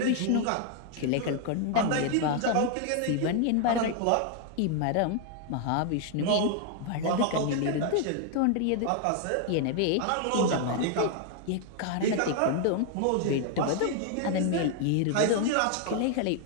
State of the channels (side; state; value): both; different; correlation 0.00